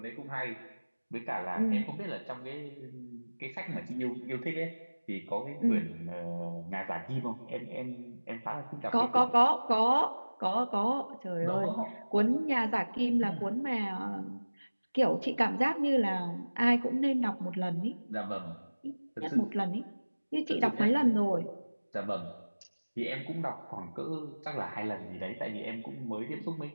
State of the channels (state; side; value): inverted; both; correlation -1.00